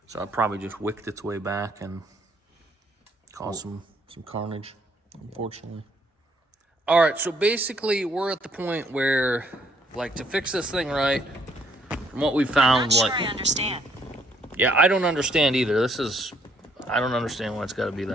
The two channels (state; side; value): normal; both; correlation 0.67